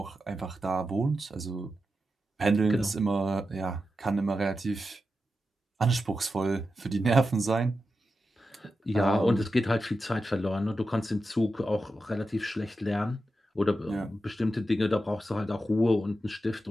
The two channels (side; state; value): both; normal; correlation 0.90